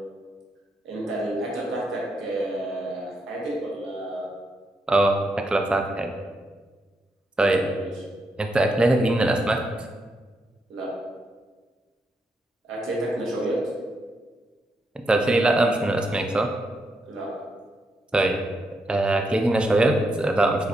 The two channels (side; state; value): both; normal; correlation 0.81